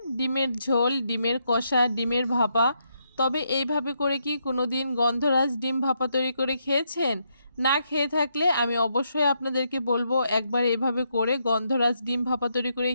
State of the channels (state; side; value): inverted; both; correlation -0.78